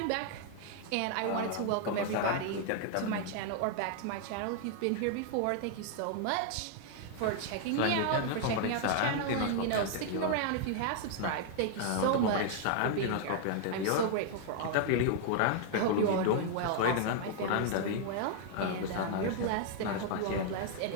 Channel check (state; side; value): different; both; correlation 0.00